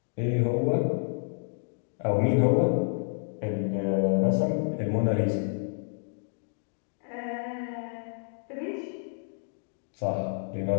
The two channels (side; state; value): right; silent; digital silence